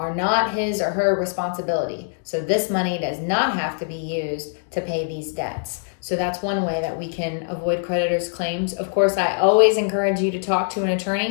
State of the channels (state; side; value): silent; right; digital silence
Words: not his or her responsibility. So this money does not have to be used to pay these debts. So that's one way that we can avoid creditors' claims. Of course, I always encourage you to talk to an